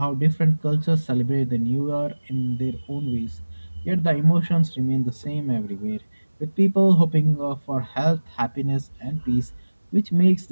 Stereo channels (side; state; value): both; inverted; correlation -1.00